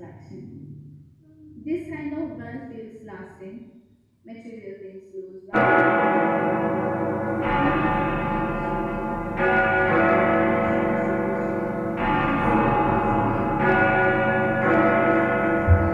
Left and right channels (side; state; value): both; identical; correlation 1.00